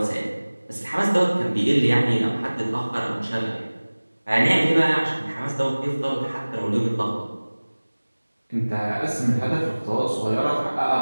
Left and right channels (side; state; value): both; inverted; correlation -1.00